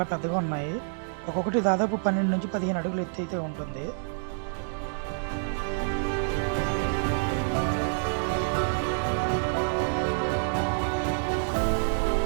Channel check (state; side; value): silent; left; 59 dB below the other